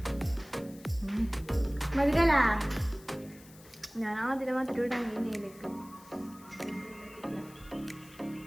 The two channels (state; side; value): noise; left; hiss, 22 dB below the sound